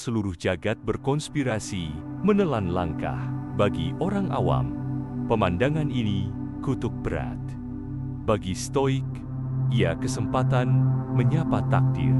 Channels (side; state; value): both; identical; correlation 1.00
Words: jagat berkonspirasi menelan langkah. Bagi orang awam, pemandangan ini kutuk berat. Bagi stoik, ia kesempatan menyapa takdir.